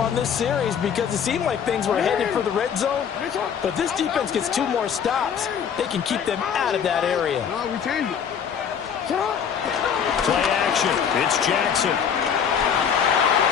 this series because it seemed like things were headed for the red zone. But if this defense gets 2 more stops, they can keep them out of that area. No, we changed it. Play action. It's Jackson.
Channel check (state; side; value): quieter; right; 7.6 dB